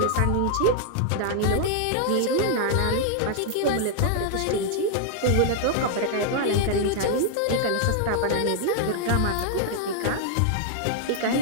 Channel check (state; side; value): different; both; correlation -0.01